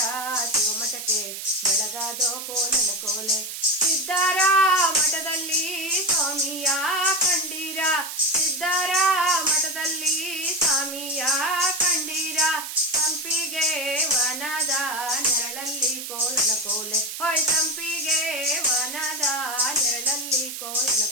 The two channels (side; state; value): right; noise; hiss, 8 dB below the sound